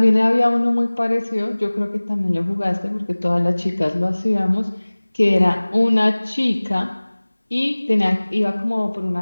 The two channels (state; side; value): inverted; both; correlation -1.00